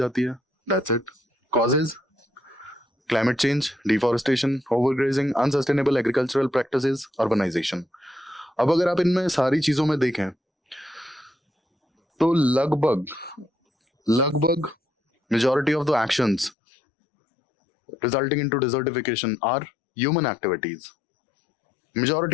है. That's it. Causes climate change, deforestation, overgrazing, unsustainable agricultural practices, urbanisation. अब अगर आप इनमें सारी चीजों में देखें तो लगभग majority of the actions resulting into desertification are human activities.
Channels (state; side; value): drops out; right; at 16.6 s